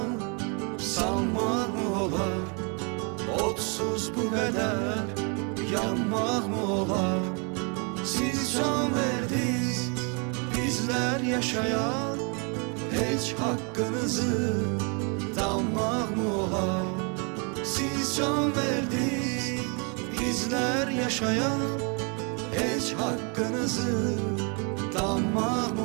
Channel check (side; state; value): left; quieter; 35.5 dB